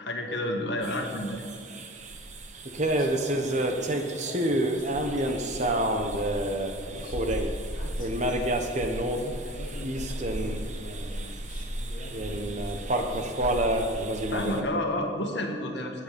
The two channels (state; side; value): normal; both; correlation 0.35